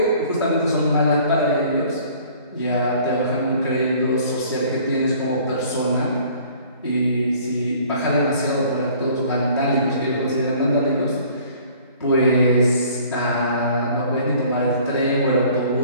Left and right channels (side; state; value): both; inverted; correlation -0.53